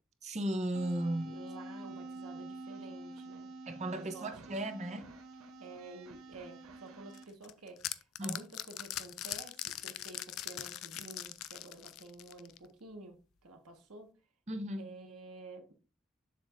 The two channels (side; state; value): both; normal; correlation 0.63